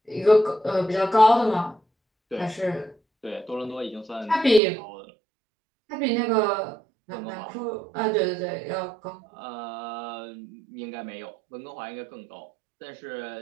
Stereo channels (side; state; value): left; drops out; at 4.6 s